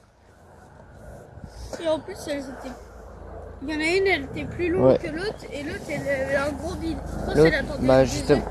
Et en plus, elles étaient... Il y en a une, elle était plus longue Ouais. que l'autre, et l'autre, elle avait un gros bide. Je pense L'autre, qu'elle attendait bah le justement,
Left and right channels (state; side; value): identical; both; correlation 1.00